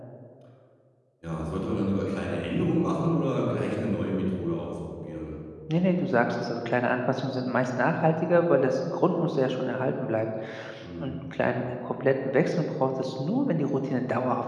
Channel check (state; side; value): identical; both; correlation 1.00